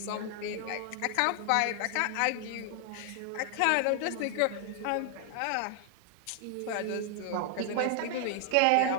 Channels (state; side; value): different; both; correlation 0.00